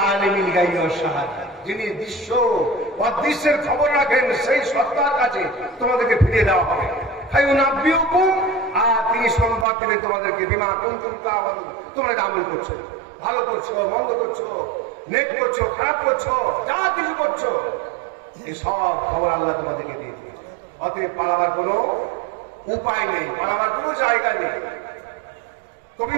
আলিমিল গায়বি ওয়াশ শাহাদা, যিনি দৃশ্য অদৃশ্যের খবর রাখেন, সেই সত্তার কাছে তোমাদেরকে ফিরিয়ে দেওয়া হবে। ফায়ুনাব্বিউকুম, আর তিনি সংবাদ দিলেন তোমাদেরকে, বিমা কুনতুম তা'মালুন, তোমরা আমল করছো, ভালো করছো, মন্দ করছো, নেক করছো, খারাপ করছো, যা কিছু করছো, এই সব খবর আল্লাহ তোমাদেরকে দিয়ে দিয়েছে। অতএব পালাবার কোনো উপায় নেই, পালাবার কোনো জায়গা নেই। কবি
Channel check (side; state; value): left; drops out; at 9.7 s